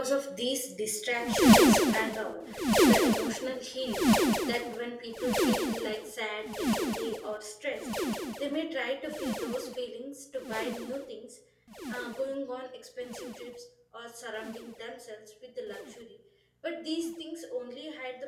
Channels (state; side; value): identical; both; correlation 1.00